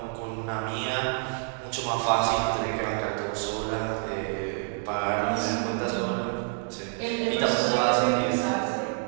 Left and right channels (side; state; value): left; silent; 55 dB below the other